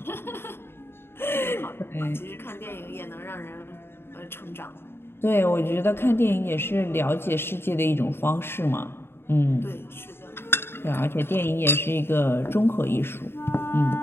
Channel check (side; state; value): right; late; 0.11 ms